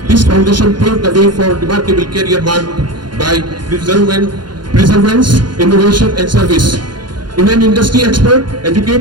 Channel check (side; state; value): left; late; 0.71 ms